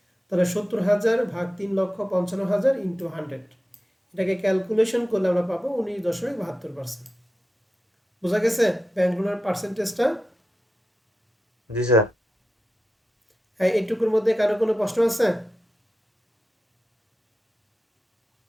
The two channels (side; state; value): both; normal; correlation 0.91